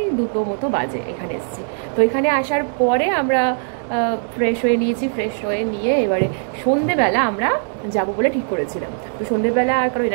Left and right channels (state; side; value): silent; left; digital silence